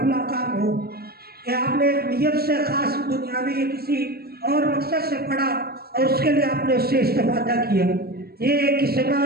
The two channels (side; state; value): left; late; 0.45 ms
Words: فلاں کام ہو، یا آپ نے ایک نیت سے خاص دنیاوی یا کسی اور مقصد سے پڑھا اور اس کے لیے آپ نے اس سے استفادہ کیا، یہ ایک قسم ہے